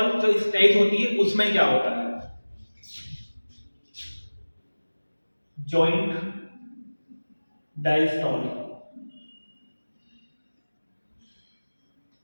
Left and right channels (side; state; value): both; inverted; correlation -1.00